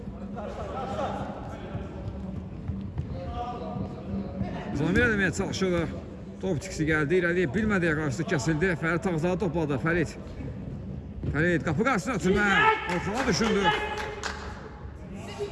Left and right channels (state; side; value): identical; both; correlation 1.00